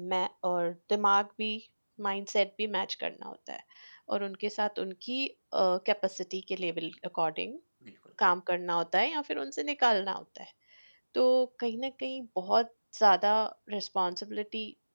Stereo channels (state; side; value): inverted; both; correlation -1.00